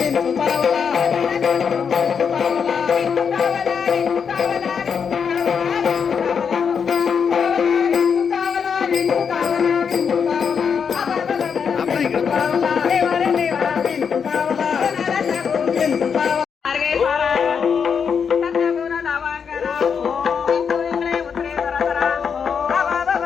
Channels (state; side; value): quieter; right; 6.6 dB